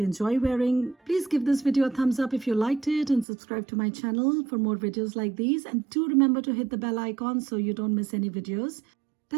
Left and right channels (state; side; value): drops out; left; at 3.2 s